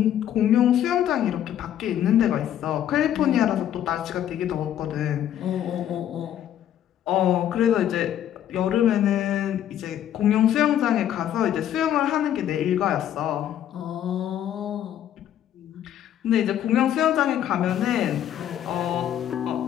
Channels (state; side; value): quieter; right; 10.8 dB